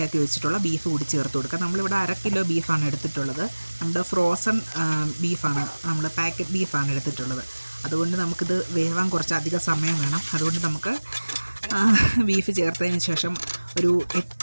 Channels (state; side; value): inverted; both; correlation -1.00